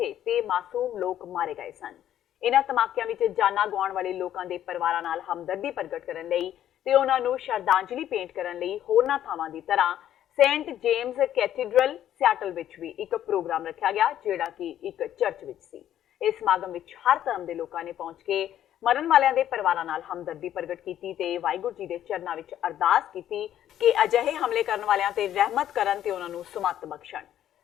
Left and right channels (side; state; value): right; quieter; 11.3 dB